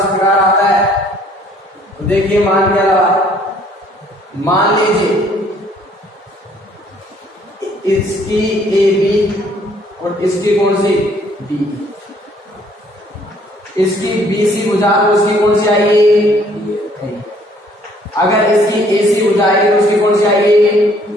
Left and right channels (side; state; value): both; normal; correlation 0.61